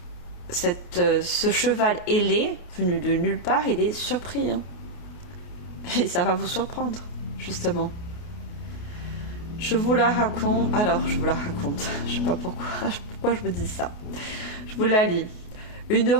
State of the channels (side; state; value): right; late; 28 ms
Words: ce cheval ailé, venu de nulle part, il est surpris. Hein. Et ça va vous surprendre, justement. Je vous la raconte. Alors, je vous la raconte. Je sais pas pourquoi. pourquoi je vous dis ça. Je vous la lis. Une